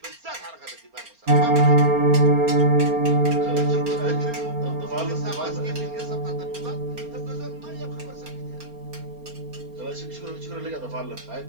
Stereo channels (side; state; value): left; late; 4.3 ms